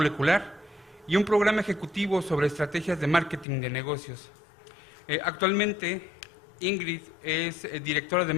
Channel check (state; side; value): drops out; right; at 3.5 s